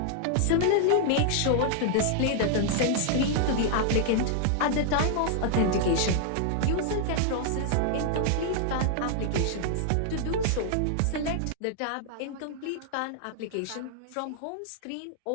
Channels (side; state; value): both; different; correlation 0.00